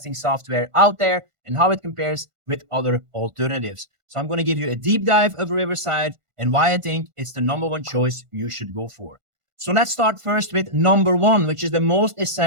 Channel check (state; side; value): late; left; 1.5 ms